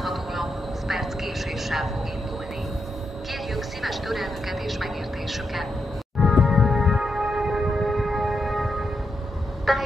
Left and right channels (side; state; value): both; normal; correlation 0.83